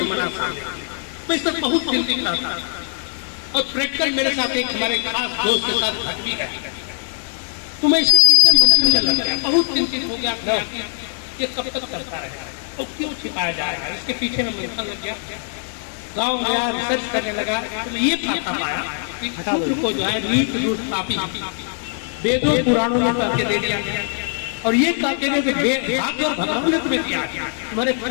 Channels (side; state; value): right; silent; 65 dB below the other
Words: सामने, मैं इस पर बहुत चिंतित रहता था। और प्रैक्टिकल मेरे साथ एक हमारे खास दोस्त के साथ घट भी है, तो मैं इसके पीछे मंथन लग गया, बहुत चिंतित हो गया ये कब तक करता रहेगा और क्यों छिपाया जाएगा, इसके पीछे में मंथन लग गया। गाँव गया, रिसर्च करने लगा, तो ये पता पाया कि शूद्र को जो है नीच दुष्ट पापी वेदों पुराणों में करके दे दिया गया। और ये कहते हैं कि भाग्य और भगवान ने तुम्हें दिया, तुम्हारे